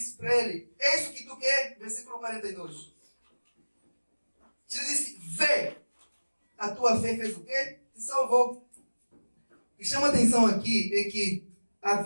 para ele: é isso que tu quer? Versículo 42. Jesus disse: vê, a tua fé fez o quê? Te salvou. O que chama atenção aqui é que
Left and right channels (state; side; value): inverted; both; correlation -1.00